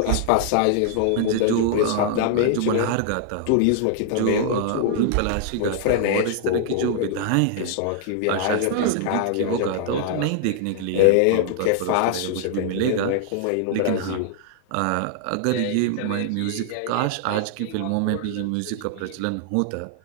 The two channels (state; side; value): different; both; correlation -0.01